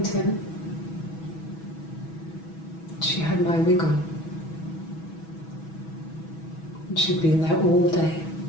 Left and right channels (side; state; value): right; late; 6.2 ms